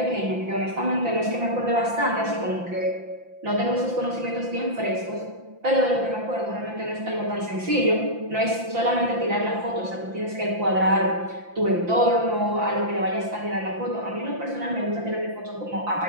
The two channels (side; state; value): left; late; 5.8 ms